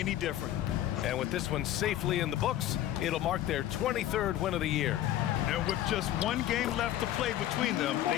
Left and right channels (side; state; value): right; quieter; 12.7 dB